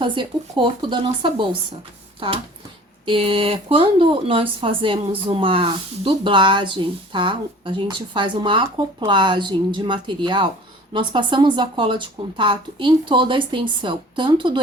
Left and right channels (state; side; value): normal; both; correlation 0.46